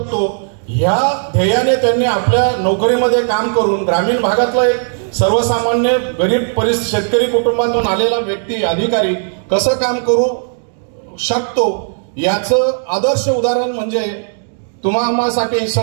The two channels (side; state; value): left; silent; digital silence